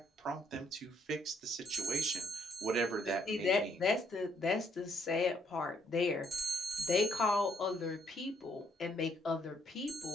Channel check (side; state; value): both; normal; correlation 0.69